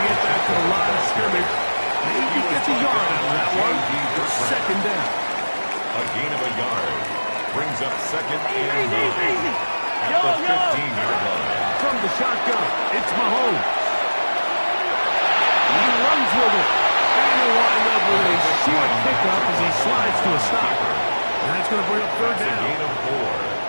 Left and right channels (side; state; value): both; inverted; correlation -1.00